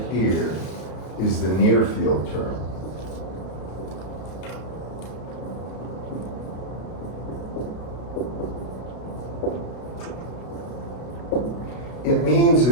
here is the near field term. It means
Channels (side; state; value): right; late; 32 ms